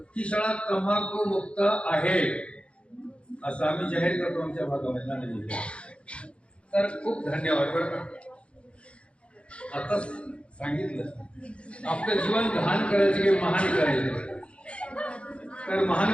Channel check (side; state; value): right; late; 0.060 ms